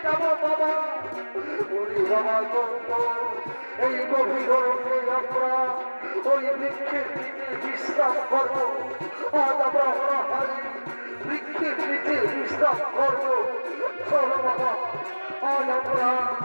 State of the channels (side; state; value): both; inverted; correlation -1.00